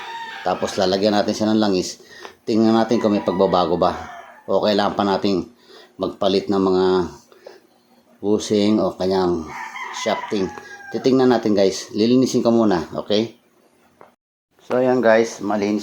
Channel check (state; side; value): identical; both; correlation 1.00